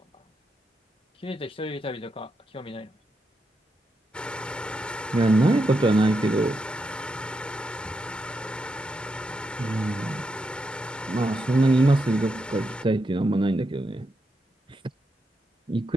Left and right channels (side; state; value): both; normal; correlation 0.84